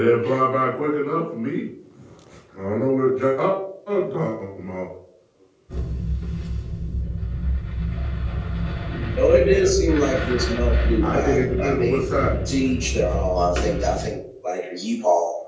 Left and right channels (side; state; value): both; identical; correlation 1.00